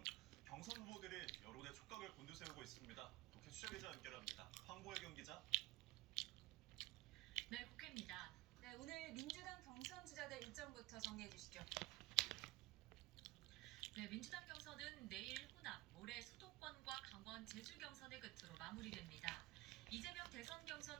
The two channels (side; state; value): left; quieter; 19.0 dB